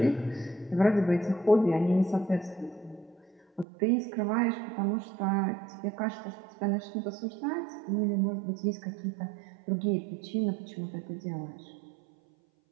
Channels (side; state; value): left; drops out; at 3.7 s